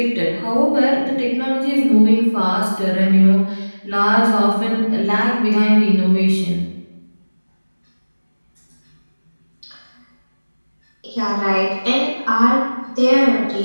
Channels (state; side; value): inverted; both; correlation -1.00